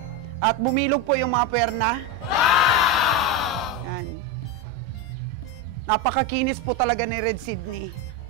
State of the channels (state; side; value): normal; both; correlation 0.13